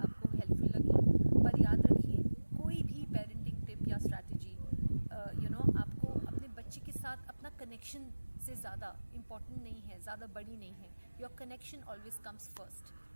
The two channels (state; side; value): inverted; both; correlation -1.00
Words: हेल्पफुल लगी, पर याद रखिए कोई भी पेरेंटिंग टिप या स्ट्रैटेजी आपको अपने बच्चे के साथ अपना कनेक्शन से ज़्यादा इम्पॉर्टेंट नहीं है, ज़्यादा बड़ी नहीं है। Your connection always comes first,